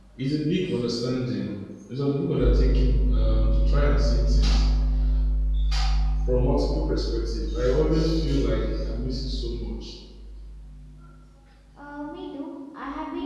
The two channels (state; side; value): identical; both; correlation 1.00